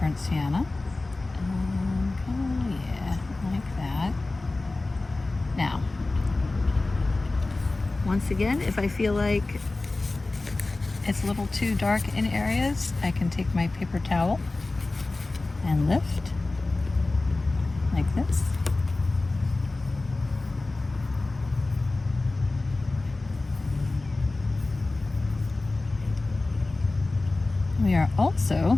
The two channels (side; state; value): right; quieter; 3.2 dB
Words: sienna. Yeah, like that. Now, once again, if I feel like it's a little too dark in areas, I can take my paper towel and lift like this. We are also